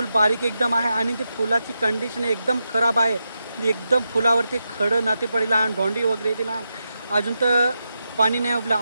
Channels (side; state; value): both; inverted; correlation -0.87